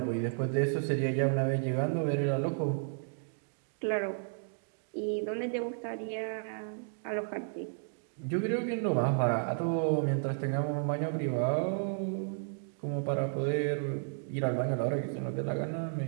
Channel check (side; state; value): left; silent; digital silence